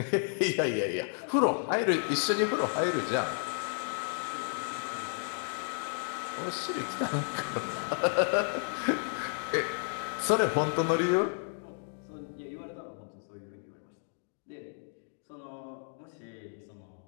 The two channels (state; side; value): silent; right; digital silence